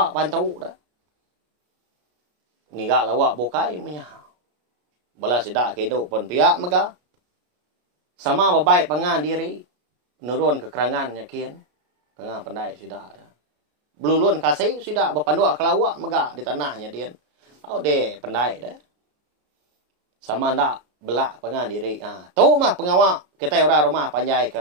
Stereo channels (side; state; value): left; late; 33 ms